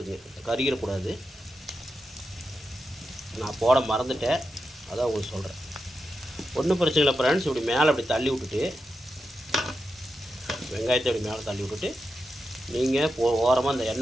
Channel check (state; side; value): normal; both; correlation 0.88